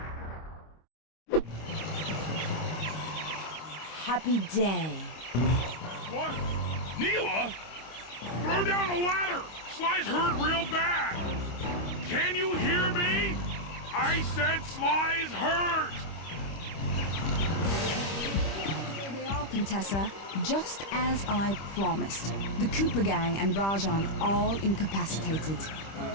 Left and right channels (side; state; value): right; late; 25 ms